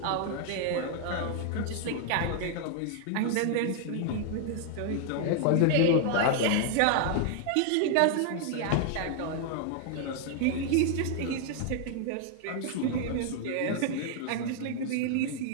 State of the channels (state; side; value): different; both; correlation 0.00